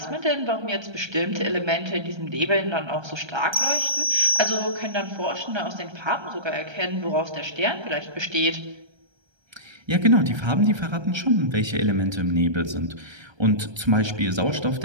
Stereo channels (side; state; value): left; late; 1.3 ms